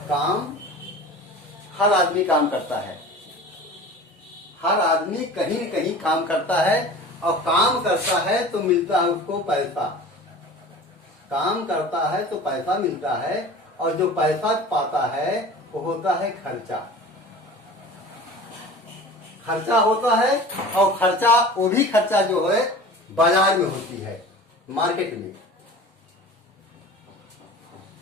काम हर आदमी काम करता है, हर आदमी कहीं न कहीं काम करता है और काम करता है तो मिलता है उसको पैसा। काम करता है तो पैसा मिलता है और जो पैसा पाता है वो होता है खर्चा। खर्चा होता है और खर्चा वो भी खर्चा जो है बाजार में होती है, मार्केट में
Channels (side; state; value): both; normal; correlation 0.39